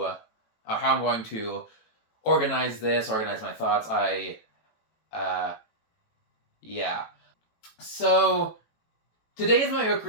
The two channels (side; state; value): right; late; 18 ms